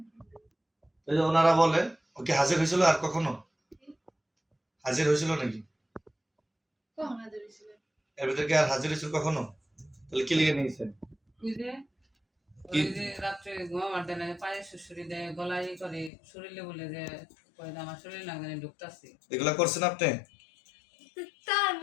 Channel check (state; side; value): drops out; right; at 16.1 s